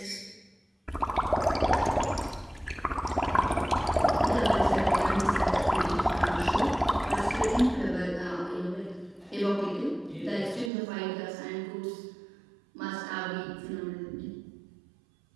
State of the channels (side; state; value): left; drops out; at 10.7 s